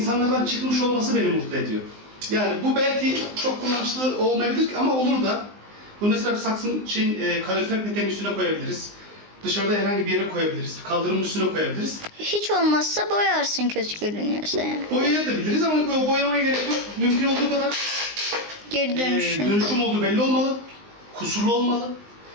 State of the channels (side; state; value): left; late; 19 ms